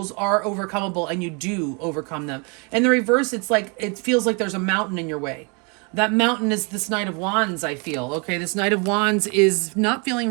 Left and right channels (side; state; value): left; quieter; 33.5 dB